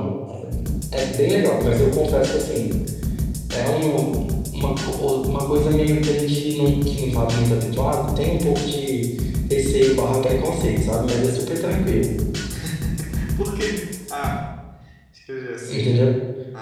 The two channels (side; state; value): both; identical; correlation 1.00